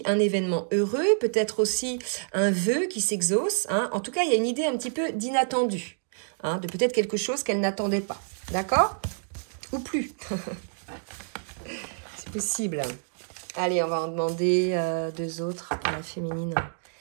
un événement heureux, peut-être aussi un vœu qui s'exauce, hein. En tout cas, il y a une idée un petit peu d'inattendu, hein, de peut-être quelque chose qu'elle n'attendait pas, d'accord? Ou plus. C'est possible. Allez, on va en demander deux autres à la féminine.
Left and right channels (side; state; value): left; silent; digital silence